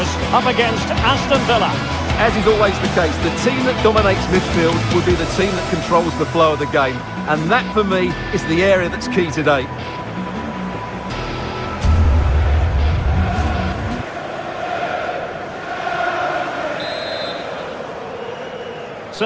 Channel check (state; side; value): identical; both; correlation 1.00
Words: up against Aston Villa. As is always the case, the team that dominates midfield will be the team that controls the flow of the game. And that, for me, is the area that's key today.